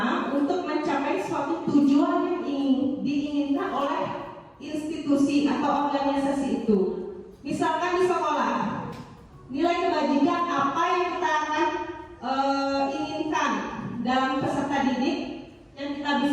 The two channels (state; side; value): identical; both; correlation 1.00